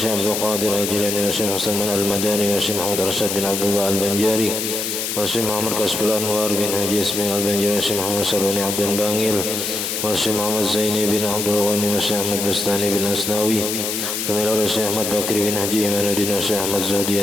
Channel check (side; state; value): left; noise; hiss, 2 dB below the sound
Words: عبد القادر الجيلاني والشيخ حسن المداني والشيخ محمد رشاد بن عبد الله البنجاري والشيخ محمد كسب الأنوار بن حجي اسماعيل البنجاري والشيخ محمد سروني عبد الباقير والشيخ محمد زيني بن عبد الغني والشيخ أحمد بستاني بن أسناوي ثم إلى الشيخ أحمد بكر بن حجي إيمان الدين والشيخ أحمد زهدي